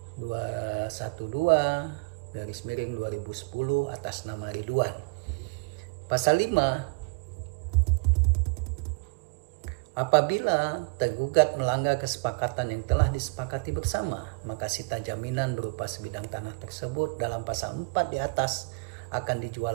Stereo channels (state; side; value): quieter; left; 32.1 dB